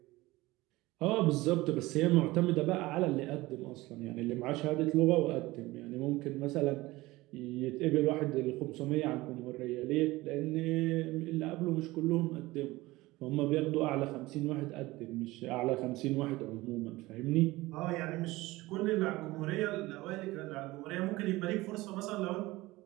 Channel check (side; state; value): left; quieter; 19.6 dB